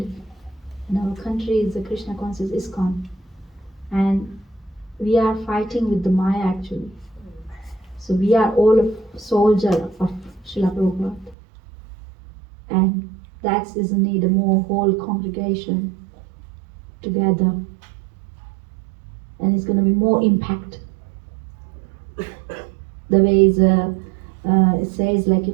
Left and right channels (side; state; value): left; drops out; at 11.4 s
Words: In our country is the Krishna Consciousness Iskcon. And we are fighting with the Maya actually. So we are all a soldier of Srila Prabhupada. And that is a need a more whole congregation together. And it's going to be more impact. The way it says